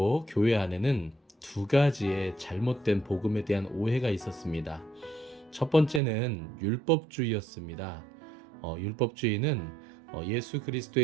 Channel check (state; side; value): drops out; left; at 6.0 s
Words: 교회 안에는 두 가지의 잘못된 복음에 대한 오해가 있었습니다. 첫 번째는 율법주의였습니다. 율법주의는 예수